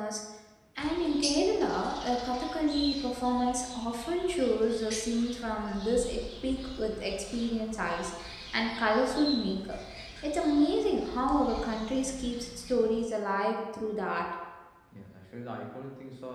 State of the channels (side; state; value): both; identical; correlation 1.00